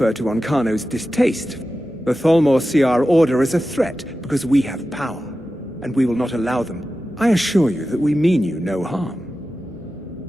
to Onkano's distaste. The Tholmor see our order as a threat because we have power, and we will not allow them. I assure you that we mean you no harm.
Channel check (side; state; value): both; normal; correlation 0.93